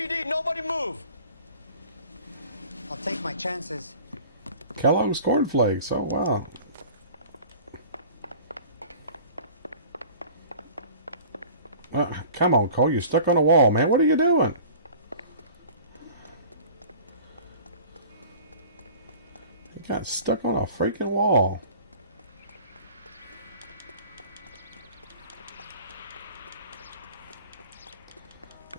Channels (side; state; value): both; inverted; correlation -0.44